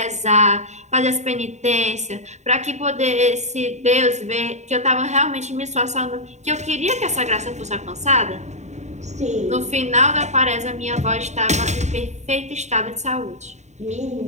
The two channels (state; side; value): late; left; 0.33 ms